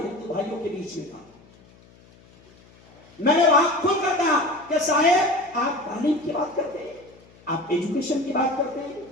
بھائیوں کے بیچ میں تھا. میں نے وہاں کھل کر کہا کہ صاحب آپ تعلیم کی بات کرتے ہیں, آپ ایجوکیشن کی بات کرتے ہیں,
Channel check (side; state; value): left; noise; hum, 27 dB below the sound